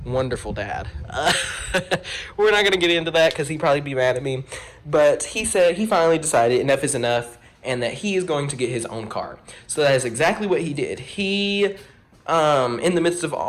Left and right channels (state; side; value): identical; both; correlation 1.00